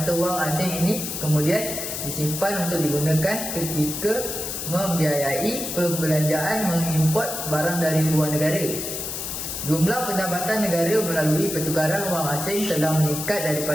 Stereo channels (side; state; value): left; noise; hiss, 5 dB below the sound